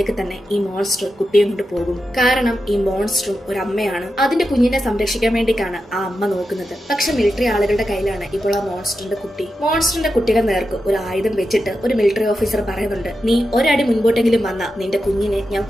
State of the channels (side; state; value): both; normal; correlation 0.89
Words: തന്നെ ഈ മോൺസ്റ്റർ കുട്ടിയെ കൊണ്ട് പോകും. കാരണം ഈ മോൺസ്റ്ററും ഒരു അമ്മയാണ്. അതിന്റെ കുഞ്ഞിനെ സംരക്ഷിക്കാൻ വേണ്ടിയിട്ടാണ് ആ അമ്മ നോക്കുന്നത്. പക്ഷെ മിലിറ്ററി ആളുകളുടെ കയ്യിലാണ് ഇപ്പോൾ ആ മോൺസ്റ്ററിന്റെ കുട്ടി. മോൺസ്റ്ററിന്റെ കുട്ടിയുടെ നേർക്ക് ഒരു ആയുധം വെച്ചിട്ട് ഒരു മിലിറ്ററി ഓഫീസർ പറയുന്നുണ്ട്, നീ ഒരടി മുൻപോട്ടെങ്കിലും വന്ന നിന്റെ കുഞ്ഞിനെ ഞാൻ